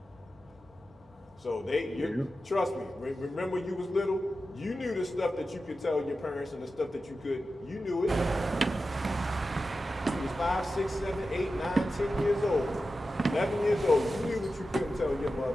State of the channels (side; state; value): both; normal; correlation 0.92